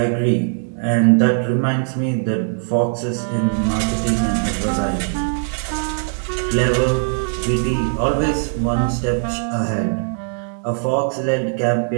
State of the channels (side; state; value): left; silent; digital silence